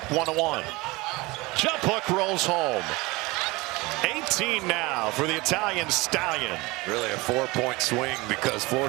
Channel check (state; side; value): quieter; left; 22.9 dB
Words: 1-1. Jump hook rolls home. 18 now for the Italian Stallion. Really a 4-point swing because